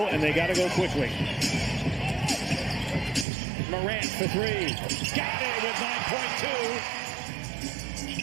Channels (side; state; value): left; drops out; at 3.2 s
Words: and they got to go quickly. Morant for three. Got it with